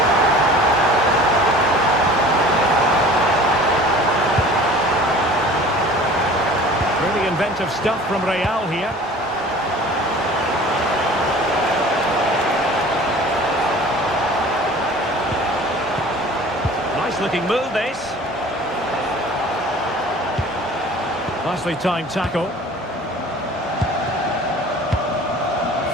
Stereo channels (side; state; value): both; normal; correlation 0.45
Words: Really inventive stuff from Real here. Nice looking move this. Nicely timed tackle.